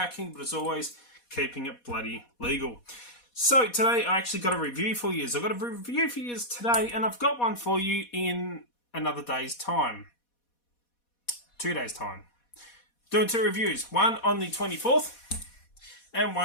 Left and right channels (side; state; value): right; late; 4.2 ms